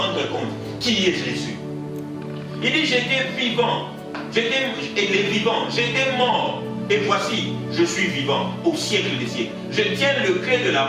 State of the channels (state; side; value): identical; both; correlation 1.00